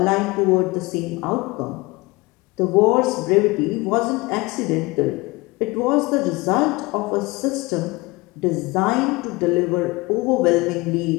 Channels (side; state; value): right; quieter; 23.5 dB